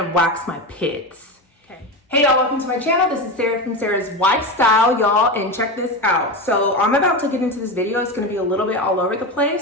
wax my pits, okay? Hey y'all, welcome to my channel. This is Sarah from Sarahswifestyle, y'all, and check this out. So I'm about to get into this video. It's gonna be a little bit all over the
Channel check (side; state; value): both; normal; correlation 0.20